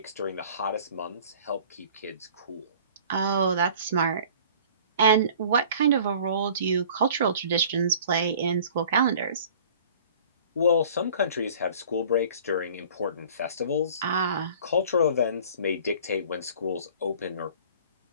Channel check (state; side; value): inverted; both; correlation -0.48